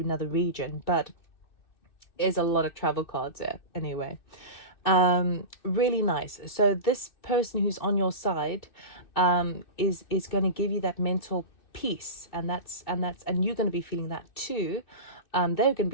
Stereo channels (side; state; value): right; late; 2.6 ms